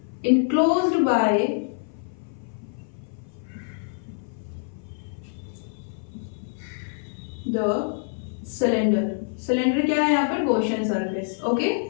enclosed by the cylinder। Cylinder क्या है यहाँ पर, Gaussian surface. Okay,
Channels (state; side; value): silent; right; 55 dB below the other